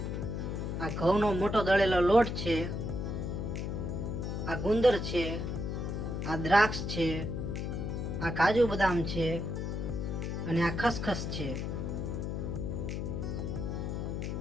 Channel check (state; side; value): noise; left; hum, 2 dB below the sound